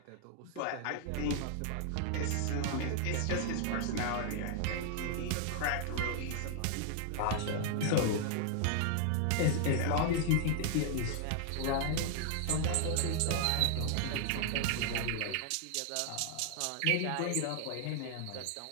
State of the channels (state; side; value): different; both; correlation 0.00